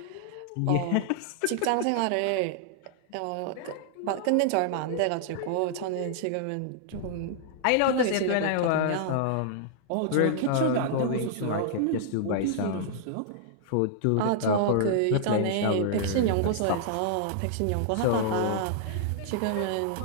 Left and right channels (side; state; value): both; different; correlation -0.01